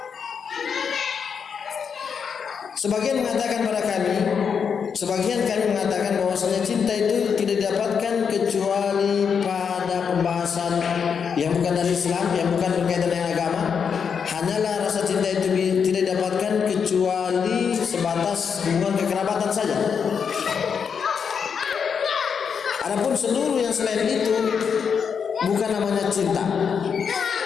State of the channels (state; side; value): quieter; right; 6.6 dB